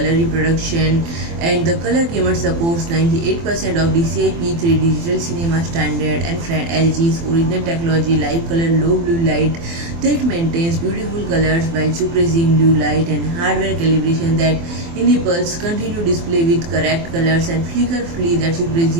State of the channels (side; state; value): left; late; 24 ms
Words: reproduction, and the color gamut supports 98% of DCI P3 digital cinema standard. And friend, LG's original technology live color low blue light that maintains beautiful colors while suppressing blue light, and hardware calibration that enables continuous display with correct colors, and flicker free that